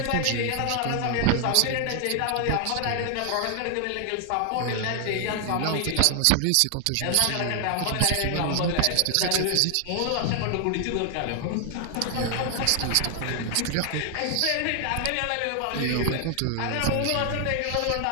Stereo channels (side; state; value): both; different; correlation 0.00